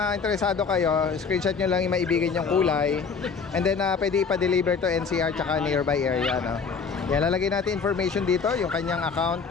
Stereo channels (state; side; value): quieter; right; 5.5 dB